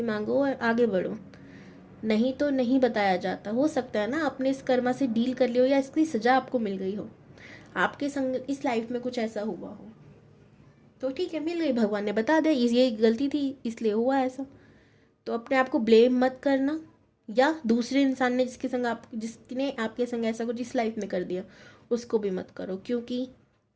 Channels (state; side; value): identical; both; correlation 1.00